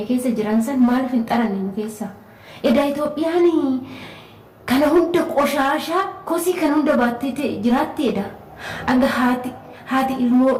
keessa jiran san maaliif hin xaranne nu keessa? Edaa Itoophiyaan kana hunda qoshaashaa kosii kan hunda baattee jiraatti edha. Aga haati ilmoo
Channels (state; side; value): identical; both; correlation 1.00